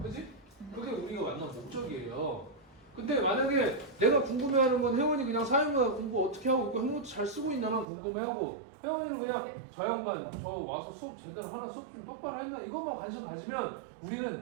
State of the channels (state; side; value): drops out; left; at 7.9 s